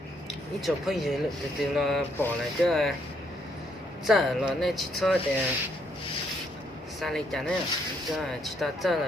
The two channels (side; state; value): both; normal; correlation 0.72